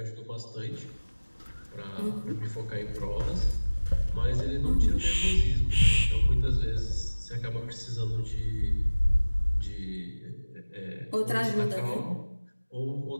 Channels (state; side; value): inverted; both; correlation -1.00